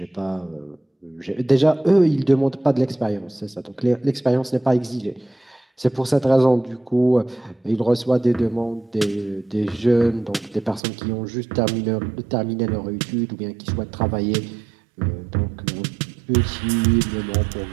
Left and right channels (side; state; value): left; drops out; at 10.8 s